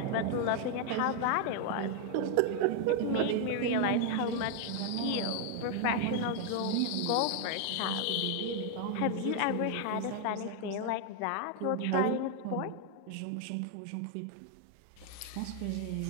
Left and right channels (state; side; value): different; both; correlation 0.00